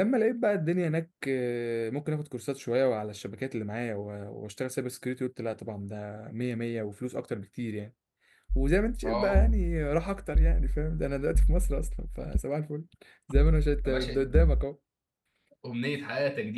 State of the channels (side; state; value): both; identical; correlation 1.00